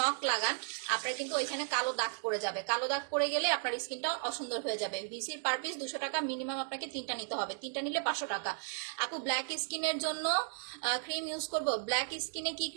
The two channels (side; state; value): left; silent; digital silence